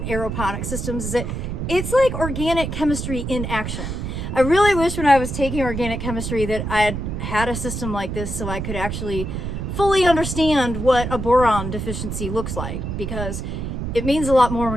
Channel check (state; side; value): noise; right; rumble, 4 dB below the sound